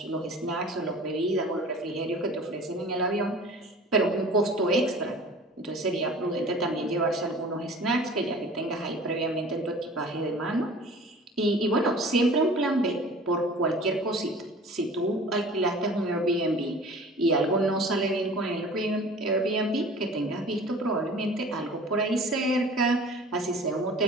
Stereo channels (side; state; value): both; normal; correlation 0.44